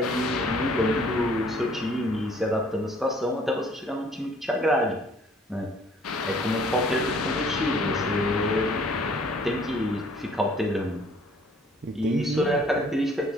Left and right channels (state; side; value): normal; both; correlation 0.58